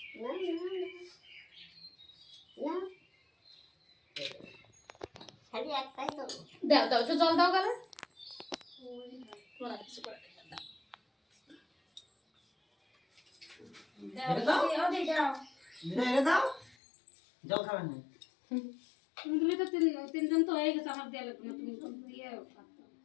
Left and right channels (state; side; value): drops out; right; at 16.8 s